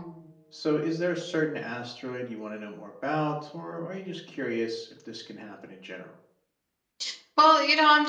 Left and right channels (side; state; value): both; identical; correlation 1.00